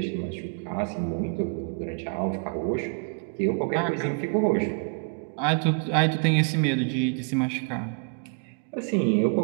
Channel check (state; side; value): quieter; left; 38.3 dB